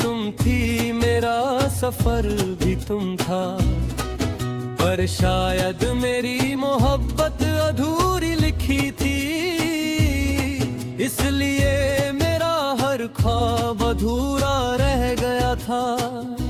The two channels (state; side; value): identical; both; correlation 1.00